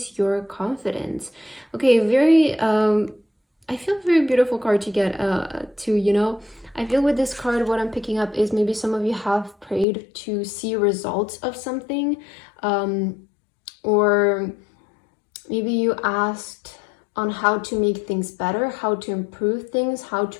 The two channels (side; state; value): right; drops out; at 9.9 s